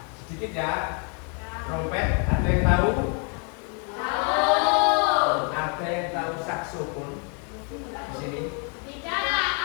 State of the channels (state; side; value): quieter; right; 38.6 dB